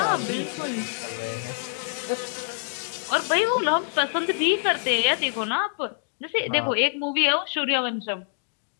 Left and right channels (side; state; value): right; silent; digital silence